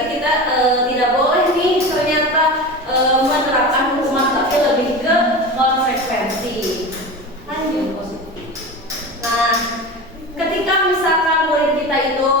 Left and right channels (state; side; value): normal; both; correlation 0.29